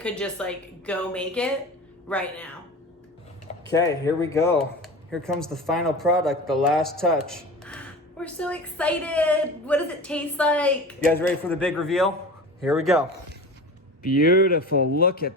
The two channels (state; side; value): normal; both; correlation 0.34